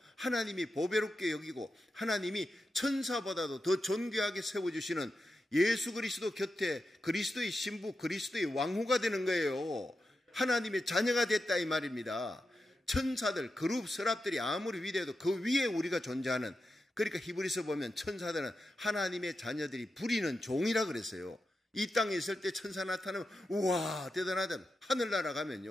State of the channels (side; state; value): both; normal; correlation 0.89